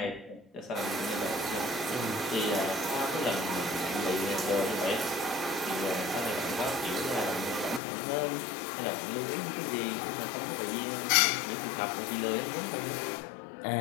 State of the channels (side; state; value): right; drops out; at 7.8 s